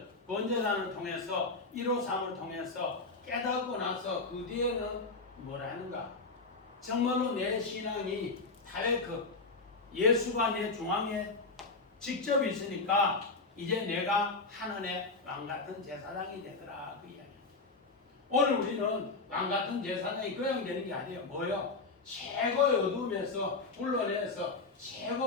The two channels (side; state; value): right; quieter; 3.8 dB